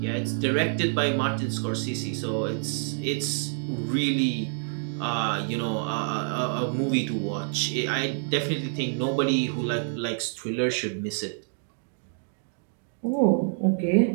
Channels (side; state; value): left; silent; 60 dB below the other